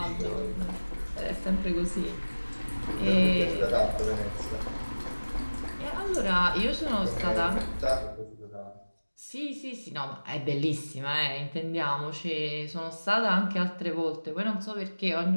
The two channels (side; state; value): both; inverted; correlation -1.00